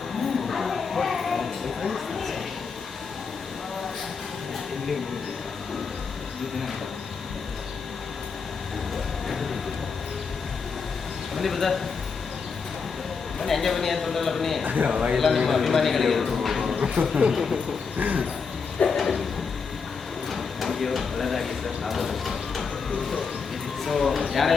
ಬನ್ನಿ ಬ್ರದರ್, ಬನ್ನಿ, ಹಂಗೆ ಬನ್ನಿ ಅಂತ ತೊಂದರೆಲ್ಲ, ಬನ್ನಿ. ಎಲ್ಲ ನಿಮ್ಮ ಅಭಿಮಾನಿಗಳಿಗೆ ಥ್ಯಾಂಕ್ ಯು. ಒಳ್ಳೆಯದಾಗಿ ಸರ್. ಸೊ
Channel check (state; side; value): quieter; right; 5.4 dB